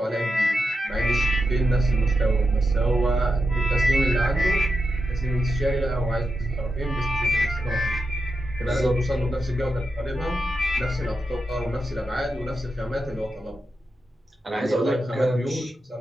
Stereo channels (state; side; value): normal; both; correlation 0.87